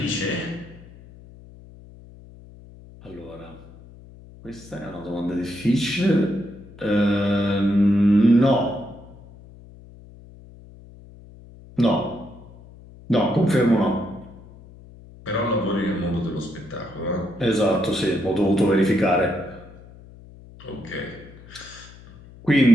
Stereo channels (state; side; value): noise; left; hum, 21 dB below the sound